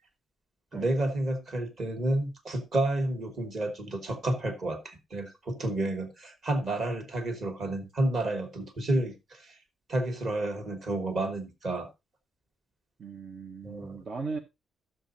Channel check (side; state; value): both; normal; correlation 0.83